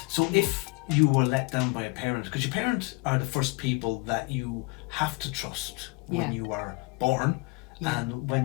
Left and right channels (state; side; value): quieter; right; 27.5 dB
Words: So if you were let down by a parent, because your parents are the first people that you have to trust when you are born, and